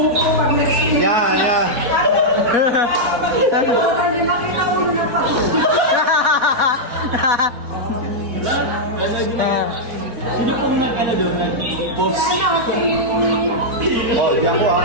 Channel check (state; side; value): late; left; 4.2 ms